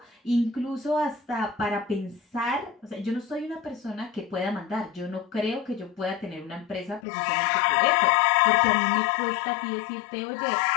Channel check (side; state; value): right; drops out; at 7.1 s